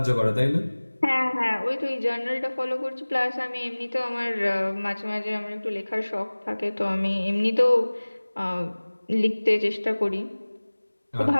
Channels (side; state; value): both; inverted; correlation -1.00